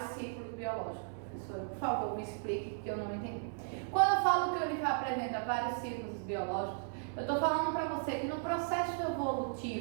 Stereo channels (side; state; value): left; silent; digital silence